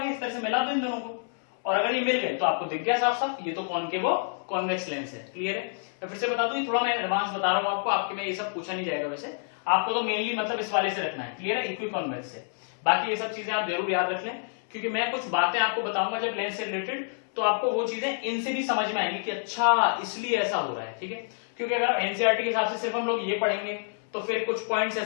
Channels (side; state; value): right; silent; 59 dB below the other